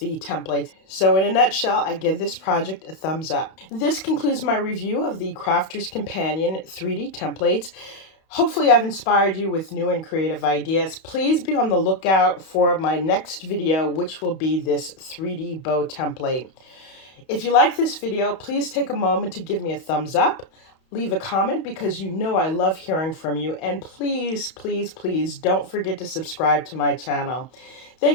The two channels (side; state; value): right; late; 31 ms